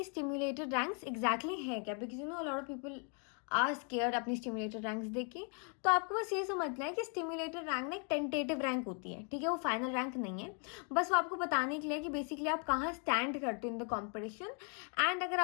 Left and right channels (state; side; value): quieter; right; 39.6 dB